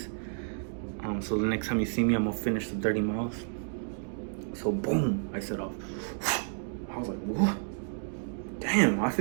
So the next time you see me, I'm gonna finish the 30 miles. So boom, I set off. I was like, what? Damn, I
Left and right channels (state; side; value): silent; left; digital silence